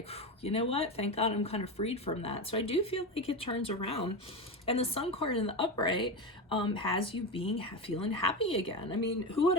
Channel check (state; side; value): normal; both; correlation 0.19